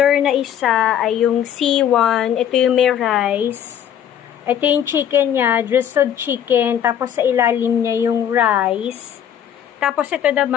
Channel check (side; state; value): right; quieter; 9.6 dB